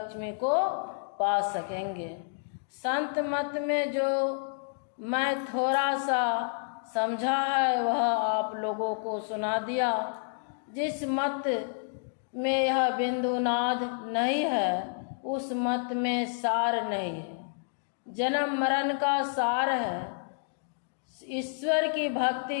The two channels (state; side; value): silent; right; digital silence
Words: को पा सकेंगे। संत मत में जो मैं थोड़ा सा समझा है वह आप लोगों को सुना दिया। जिस मत में यह बिंदु नाद नहीं है उस मत में सार नहीं है। जन्म मरण का सार है। ईश्वर की भक्ति